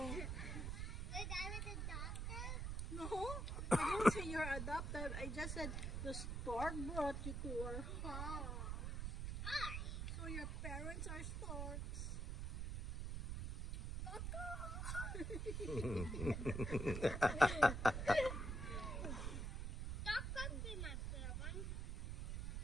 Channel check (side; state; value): right; noise; rumble, 2 dB below the sound